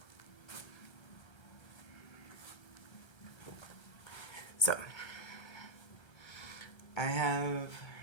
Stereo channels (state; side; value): late; right; 1.3 ms